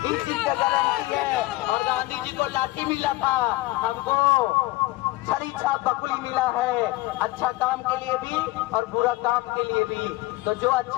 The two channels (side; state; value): right; quieter; 19.1 dB